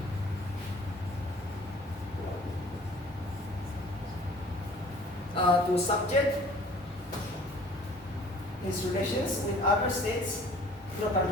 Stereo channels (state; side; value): normal; both; correlation 0.52